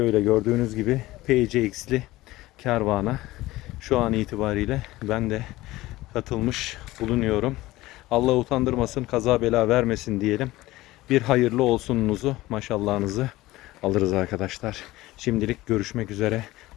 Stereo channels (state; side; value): quieter; right; 18.0 dB